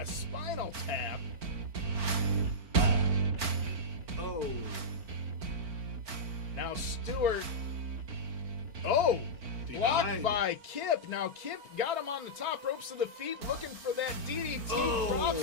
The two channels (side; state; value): left; late; 4.4 ms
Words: spinal tap. Oh. Now Stewart, blocked by Kip. Now Kip got him on the top ropes of the feet, looking for that DDT.